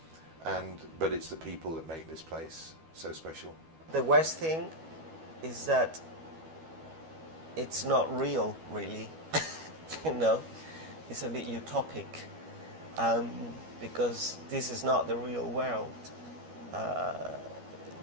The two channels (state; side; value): late; left; 12 ms